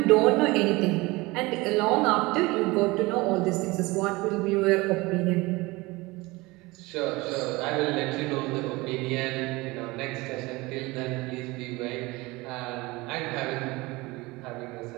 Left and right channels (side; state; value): left; quieter; 22.4 dB